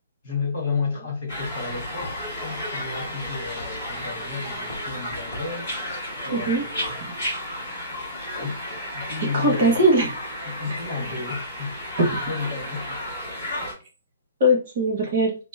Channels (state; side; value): inverted; both; correlation -0.37